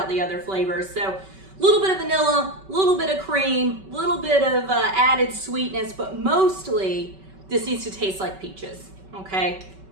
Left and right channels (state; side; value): late; left; 5.2 ms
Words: the other flavors. So a little bit of vanilla, a little bit of cream, a little bit of added sweetness, but mostly this needs to taste like peaches, okay?